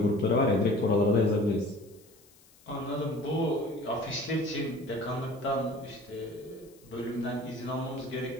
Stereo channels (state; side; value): noise; left; hiss, 27 dB below the sound